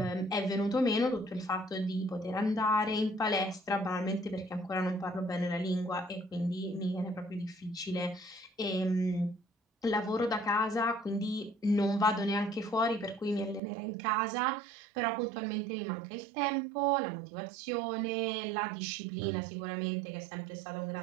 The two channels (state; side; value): drops out; left; at 13.6 s